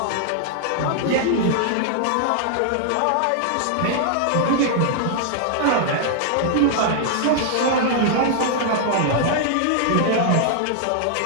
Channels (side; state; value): both; different; correlation -0.01